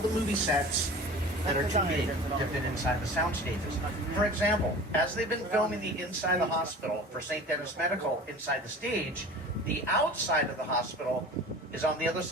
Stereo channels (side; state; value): both; normal; correlation 0.39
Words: movie sets that are too big to fit inside the sound stages. For example, as they've been filming the inside of the hospital for St. Denis Medical inside the stage, the outside of the hospital is on the other